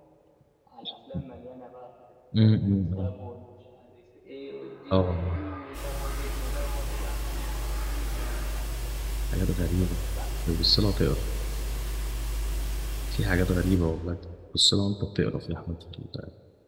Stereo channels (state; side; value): identical; both; correlation 1.00